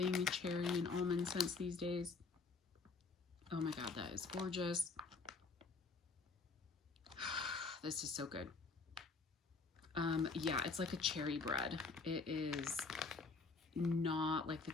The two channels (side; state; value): right; quieter; 4.2 dB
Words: cherry and almond scents these days. Oh my god, that is gorgeous. This is so good. Yeah, it's like a cherry bread. It is not like the